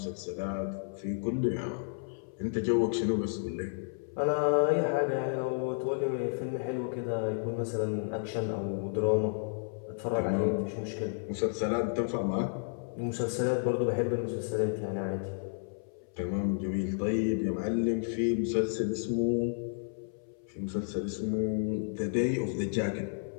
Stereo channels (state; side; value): silent; right; 57 dB below the other